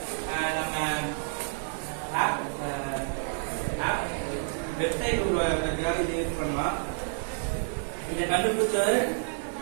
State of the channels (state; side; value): silent; left; 58 dB below the other